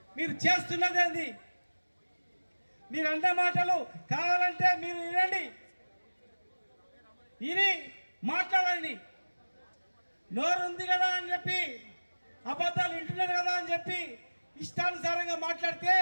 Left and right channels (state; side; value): inverted; both; correlation -1.00